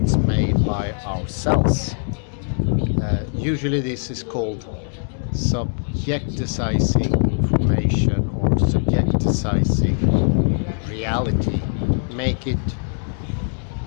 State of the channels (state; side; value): silent; right; digital silence